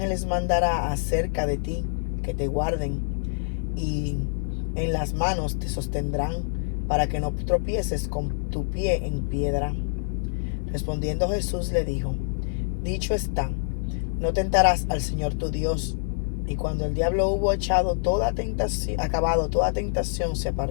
mandará acerca de ti, que te guarden, y en las manos te sostendrán, para que no tropieces con tu pie en piedra. Respondiendo Jesús le dijo: dicho está, no tentarás al Señor tu Dios. Y cuando el diablo hubo acabado toda tentación, se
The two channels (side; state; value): right; silent; 61 dB below the other